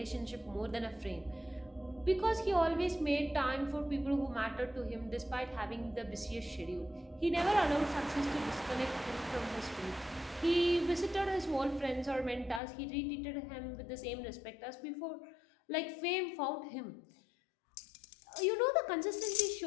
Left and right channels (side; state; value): right; drops out; at 12.6 s